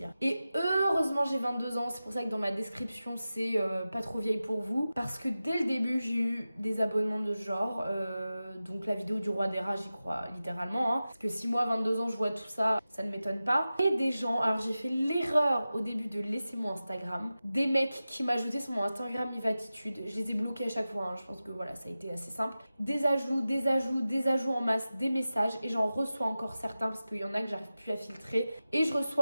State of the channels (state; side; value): inverted; both; correlation -0.94